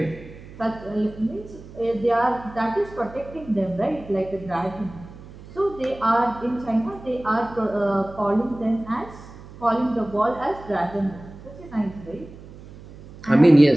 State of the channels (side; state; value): right; noise; hum, 17 dB below the sound